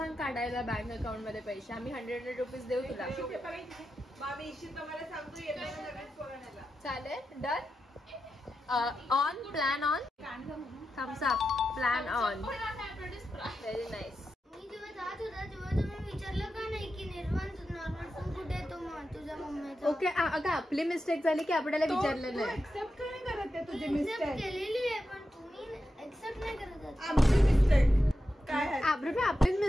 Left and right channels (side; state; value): both; normal; correlation 0.89